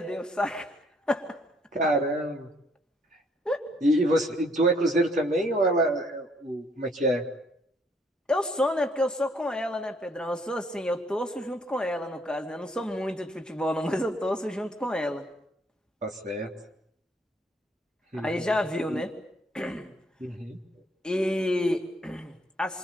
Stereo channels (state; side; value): normal; both; correlation 0.67